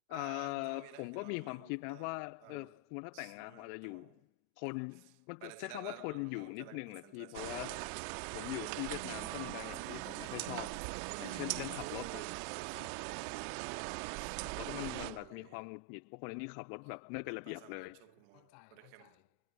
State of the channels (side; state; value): both; different; correlation 0.01